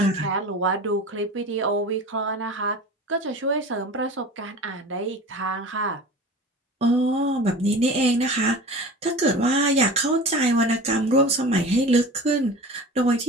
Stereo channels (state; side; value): normal; both; correlation 0.36